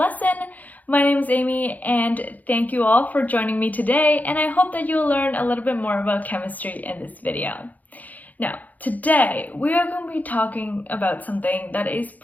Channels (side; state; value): right; late; 0.080 ms